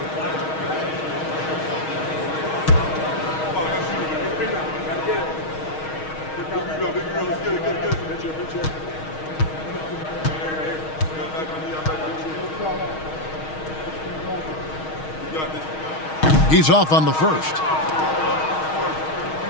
He's off on the first.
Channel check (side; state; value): right; late; 6.4 ms